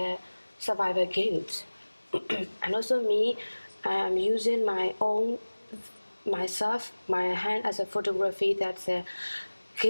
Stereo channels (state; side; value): inverted; both; correlation -1.00